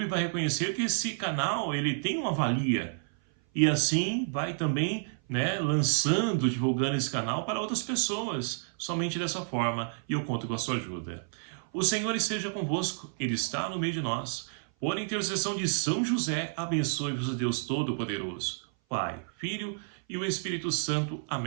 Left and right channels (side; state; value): left; silent; 56 dB below the other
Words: vai reconhecer que esse canal ele tem uma valia. E assim vai também lançando, divulgando esse canal para outras pessoas, somente dessa forma, e eu conto com a sua ajuda. O Senhor esteja convosco, Ele está no meio de nós. Por intercessão de São José, abençoe-vos o Deus Todo-Poderoso, Pai, Filho e o Espírito Santo.